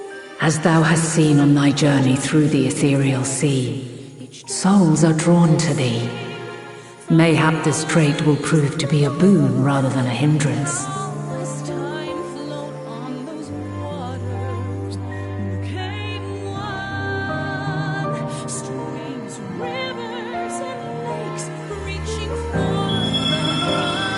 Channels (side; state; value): both; identical; correlation 1.00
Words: As thou hast seen on thy journey through the ethereal sea, souls are drawn to thee. Mayhap this trait will prove to be a boon rather than a hindrance.